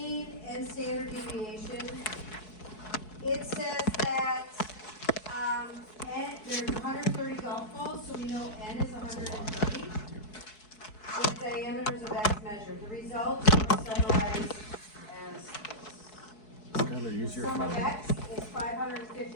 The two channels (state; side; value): late; right; 4.7 ms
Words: and standard deviation. It says that there's 130 golf balls, so we know N is 130. With diameters of X measured. The results are summarized as this. Skylar, use your Sum of phone. X is